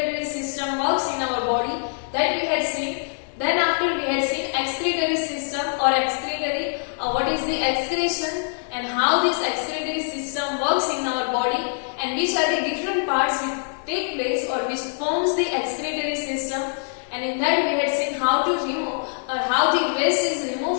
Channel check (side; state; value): right; silent; digital silence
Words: system works in our body, that we had seen. Then after we had seen excretory system or excretory, what is the excretion and how this excretory system works in our body and which are the different parts which take place or which forms the excretory system. And in that we had seen how to remove or how the waste is